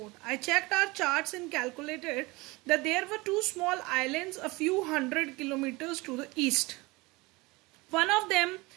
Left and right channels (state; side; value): quieter; left; 23.4 dB